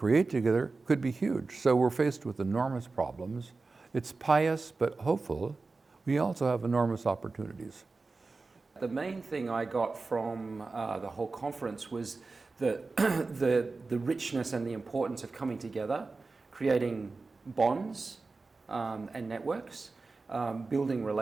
together could be huge. So we're faced with enormous problems. It's pious but hopeful. We also have enormous opportunities. The main thing I got from the whole conference was the richness and the importance of coming together, creating bonds and networks, building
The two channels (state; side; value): quieter; left; 3.8 dB